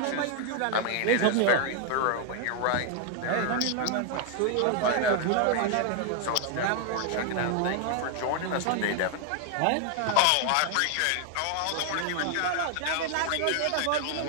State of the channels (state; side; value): different; both; correlation 0.00